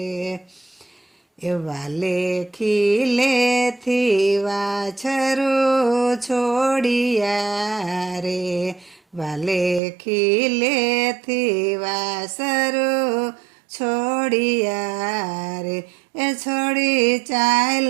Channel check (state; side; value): drops out; left; at 9.8 s